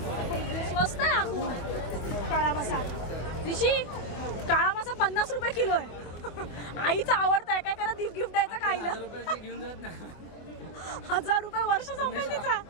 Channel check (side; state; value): right; late; 24 ms